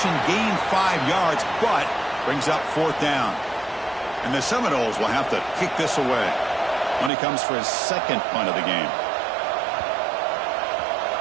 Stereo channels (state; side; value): drops out; left; at 7.1 s